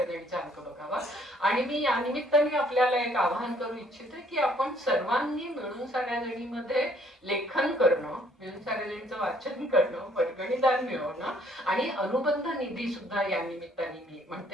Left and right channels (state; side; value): normal; both; correlation 0.63